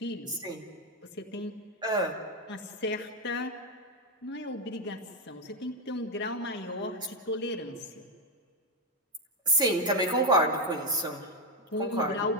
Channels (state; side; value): normal; both; correlation 0.06